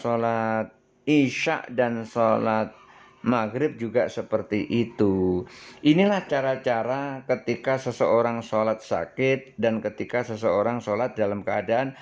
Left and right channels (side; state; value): both; identical; correlation 1.00